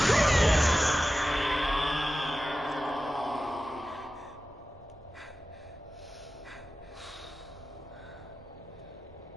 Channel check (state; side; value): normal; both; correlation 0.95